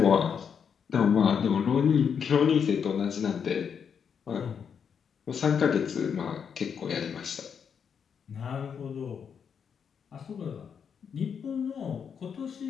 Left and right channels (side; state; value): right; quieter; 7.1 dB